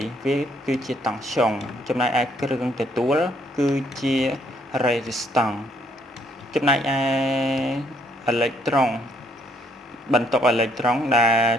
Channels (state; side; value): normal; both; correlation 0.68